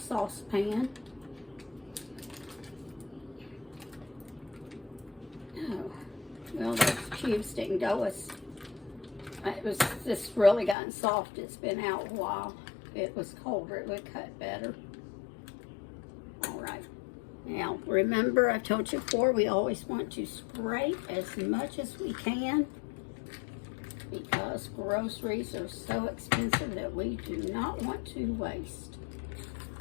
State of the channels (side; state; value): right; drops out; at 10.8 s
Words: Well, those cubes didn't go as, it was just really gotten soft. It's been out a while. If it was colder, it would cut better. All right. Now, remember, I've told you before, we always want to scrape as much as we can, because groceries are so expensive that we do not want to waste.